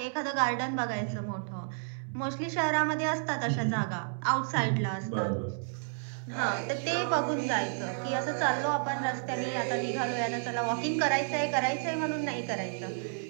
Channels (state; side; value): silent; left; 57 dB below the other